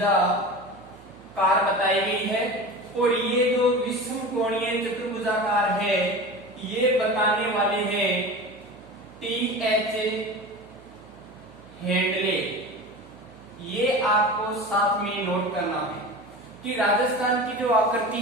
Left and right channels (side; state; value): right; noise; hum, 23 dB below the sound